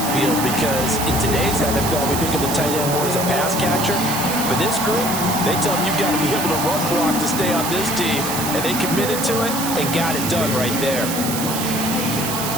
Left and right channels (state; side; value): noise; right; hiss, 4 dB below the sound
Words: field? Because in today's NFL, we think of the tight end more as a pass catcher. But this group, they tell them you've got to be able to run block to stay on this team. And they committed to it and got it done right there.